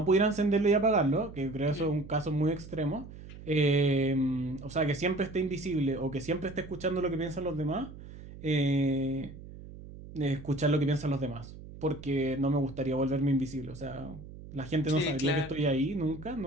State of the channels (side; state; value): right; noise; hum, 15 dB below the sound